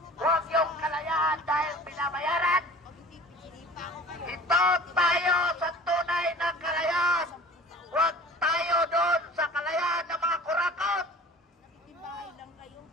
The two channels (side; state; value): both; normal; correlation 0.43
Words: Huwag yung kalayaan dahil binabayaran. Ito tayo sa tunay na kalayaan. Huwag tayo doon sa kalayaan ng mga kurakot.